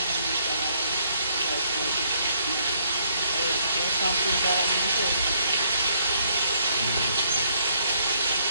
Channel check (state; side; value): inverted; both; correlation -0.69